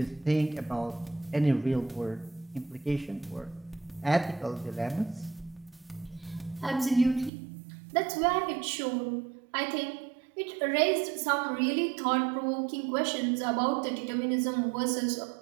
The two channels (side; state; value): left; drops out; at 7.3 s